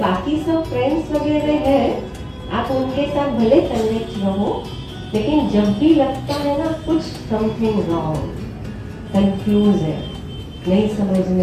सब फ्रेंड्स वगैरह है, आप उनके साथ भले कनेक्ट रहो, लेकिन जब भी लगता है ना कुछ समथिंग रॉन्ग, कंफ्यूज है, नहीं समझ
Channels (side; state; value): both; identical; correlation 1.00